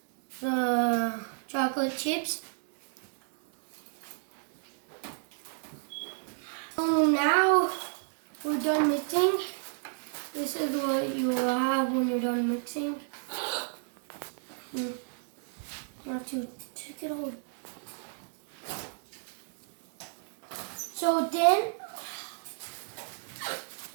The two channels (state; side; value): silent; left; 55 dB below the other